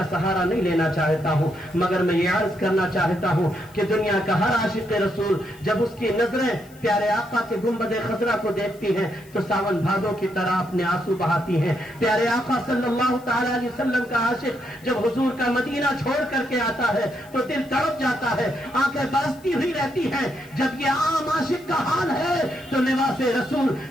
سہارا نہیں لینا چاہتا ہوں، مگر میں یہ عرض کرنا چاہتا ہوں کہ دنیا کا ہر عاشق رسول جب اس کی نظریں پیارے آقا کے گنبد خضرا کو دیکھتی ہیں تو ساون بھادوں کی طرح اپنے آنسو بہاتی ہیں۔ پیارے آقا صلی اللہ تعالی علیہ وسلم کا عاشق جب حضور کا مدینہ چھوڑ کر کے آتا ہے تو دل تڑپ جاتا ہے، آنکھیں برستی ہوئی رہتی ہیں۔ جب یہ عام عاشق کا حال ہے تو لباس رسول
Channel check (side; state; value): left; noise; hiss, 26 dB below the sound